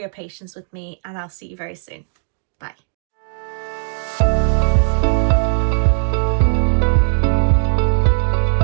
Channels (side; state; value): left; silent; digital silence